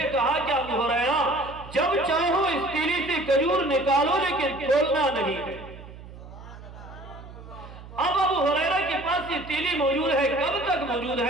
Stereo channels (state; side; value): noise; right; hum, 16 dB below the sound